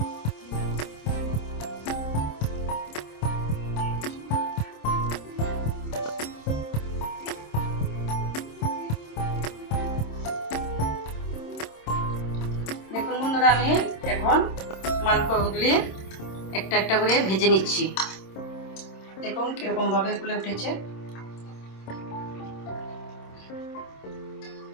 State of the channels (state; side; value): late; right; 26 ms